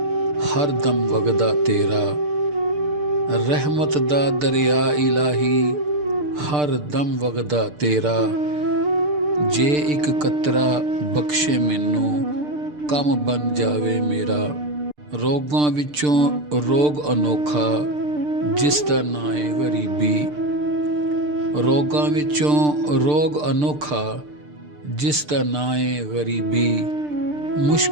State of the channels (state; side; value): late; left; 6.7 ms